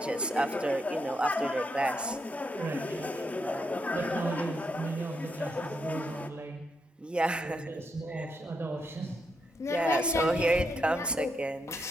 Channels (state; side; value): normal; both; correlation 0.80